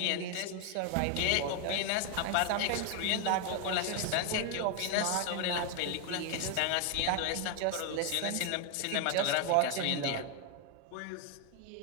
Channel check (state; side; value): different; both; correlation 0.01